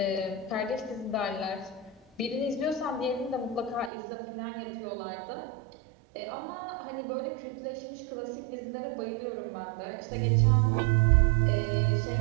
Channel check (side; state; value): left; drops out; at 3.9 s